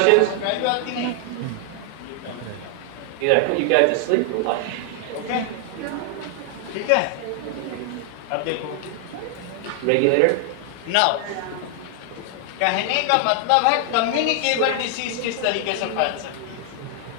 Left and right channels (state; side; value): different; both; correlation 0.00